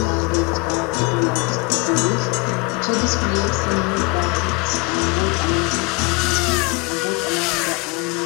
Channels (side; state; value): right; quieter; 28.7 dB